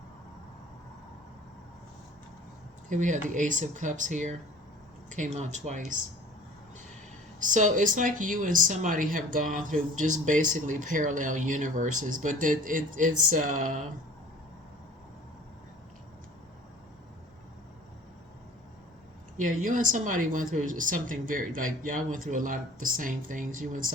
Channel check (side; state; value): both; normal; correlation 0.46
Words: Here we have the Ace of Cups here. Came out twice. So it's like you and somebody have gone through just basically parallel universes, but it's yeah, you and somebody went through something very, like, y'all went through a lot of the same things. You and